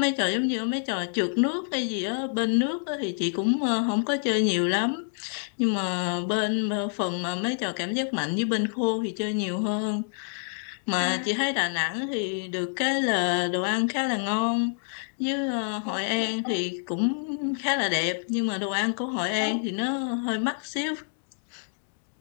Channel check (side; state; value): right; silent; digital silence